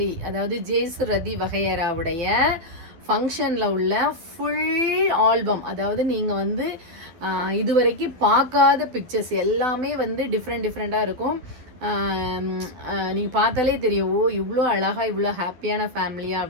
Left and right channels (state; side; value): late; left; 12 ms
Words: அதாவது ஜேசு ரதி வகையராவுடைய ஃபங்க்ஷனில் உள்ள ஃபுல் ஆல்பம், அதாவது நீங்கள் வந்து இதுவரைக்கும் பார்க்காத பிக்சர்ஸ் எல்லாமே வந்து டிஃப்ரெண்ட்டாக இருக்கும். நீங்கள் பார்த்தாலே தெரியும், ஓ இவ்வளோ அழகாக இவ்வளோ ஹாப்பியான ஃபேமிலியா